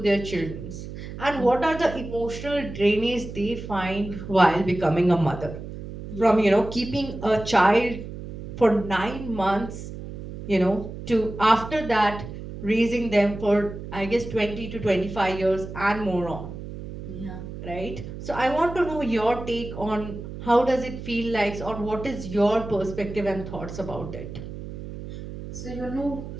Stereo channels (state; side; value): noise; right; hum, 10 dB below the sound